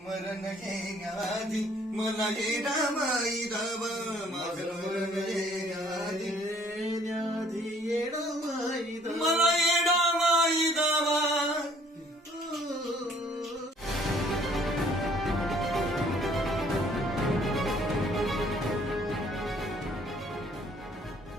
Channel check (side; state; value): both; normal; correlation 0.59